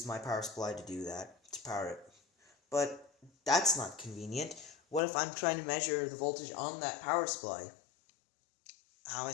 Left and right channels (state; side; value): drops out; right; at 5.0 s